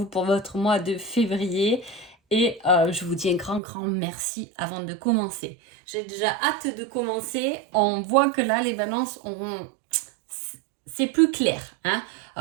pour votre mois de février et je vous dis un grand merci avant de commencer. J'ai déjà hâte de commencer. On voit que là, les balances ont c'est plus clair. Hein.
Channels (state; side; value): drops out; left; at 3.6 s